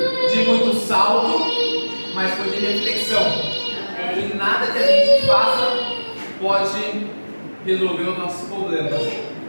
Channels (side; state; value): both; inverted; correlation -1.00